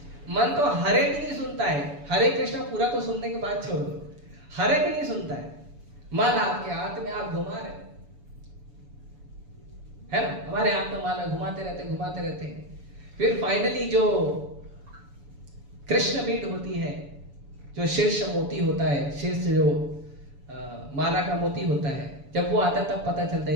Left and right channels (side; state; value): left; late; 7.0 ms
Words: मन तो हरे भी नहीं सुनता है, हरे कृष्ण पूरा तो सुनने के बाद छोड़ दो, हरे भी नहीं सुनता है। माला आपके हाथ में आप घुमा रहे है ना, हमारे हाथ में माला घुमाते रहते हैं। फिर फाइनली जो कृष्ण बीट होती है, जो शीर्ष मोती होता है, शीर्ष जो माला का मोती होता है, जब वो आता है तब पता चलता है